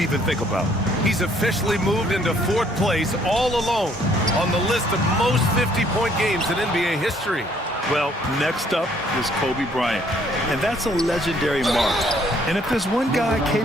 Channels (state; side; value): normal; both; correlation 0.64